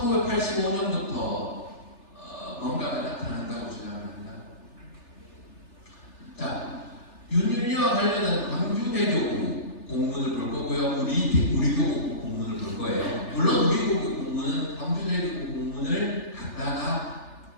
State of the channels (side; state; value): right; late; 3.3 ms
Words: 뭔가가 나타난다고 주장합니다. 자, 윤율리와 관련한 광주대교구 공문을 볼 거고요. 우리 교구 공문을 볼 거예요. 물론 우리 교구 공문은 광주대교구 공문을 갖다가